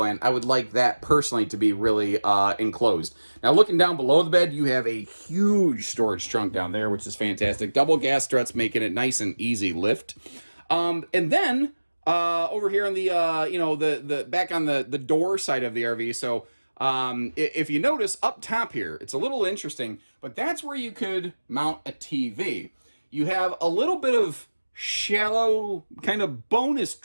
I would like that personally to be really enclosed. Now, looking down below the bed, you have a huge storage trunk down there, which is fantastic. Double gas struts making it nice and easy lift. And then over here on the the back on the door side of the RV, so if you notice up top here, it's a little interesting, but that's where you could mount a TV. You have a little bit of shallow kind of bonus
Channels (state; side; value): inverted; both; correlation -1.00